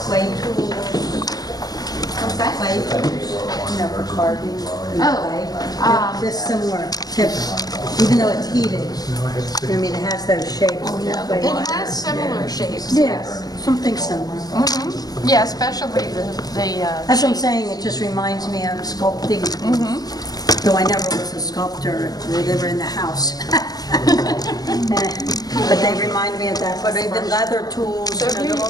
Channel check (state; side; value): late; right; 0.19 ms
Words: tools, What's that? clay tools, for carving and Oh, clay. This similar tip, even though it's heated. I mean, it has those shapes. It has similar shapes. Yes, something similar. Yeah, especially the That's what I'm saying, it just reminds me of sculpting. Though I never was a sculptor, they were in the house. But they remind me of that, but even leather tools, So they're all